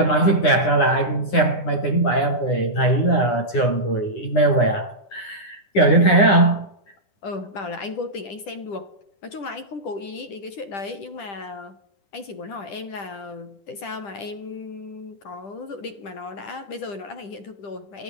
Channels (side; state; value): right; late; 10 ms